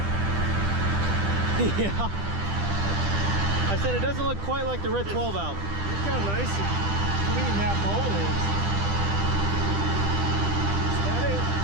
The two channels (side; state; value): left; late; 10 ms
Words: Yeah. I said it doesn't look quite like the red 12 valve. Look how nice and clean that bowl is. Is that it?